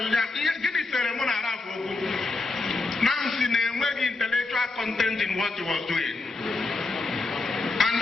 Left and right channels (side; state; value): right; quieter; 3.5 dB